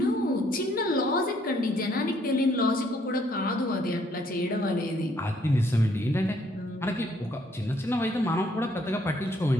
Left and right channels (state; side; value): normal; both; correlation 0.67